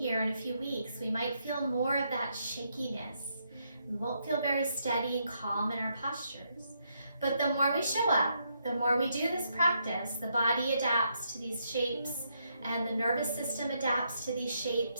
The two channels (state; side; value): inverted; both; correlation -0.77